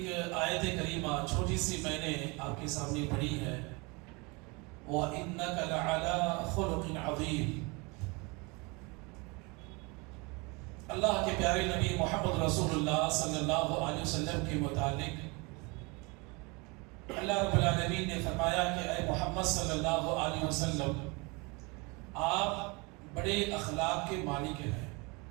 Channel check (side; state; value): left; quieter; 27.9 dB